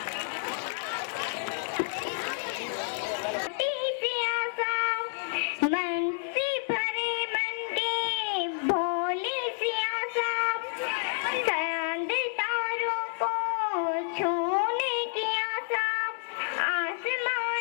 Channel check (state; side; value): silent; right; 58 dB below the other